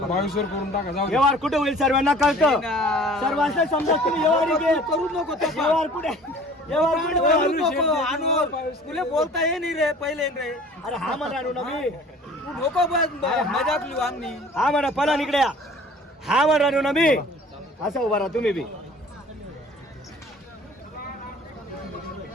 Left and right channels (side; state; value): both; normal; correlation 0.48